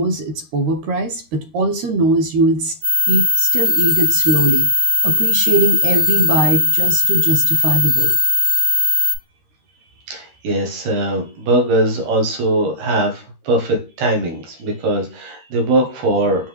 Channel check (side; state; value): left; late; 13 ms